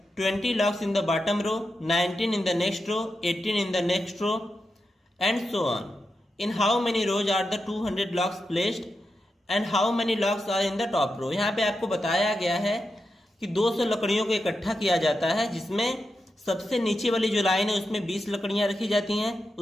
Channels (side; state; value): both; normal; correlation 0.88